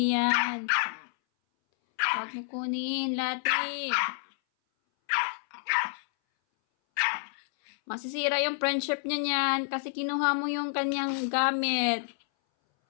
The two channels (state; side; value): silent; right; 59 dB below the other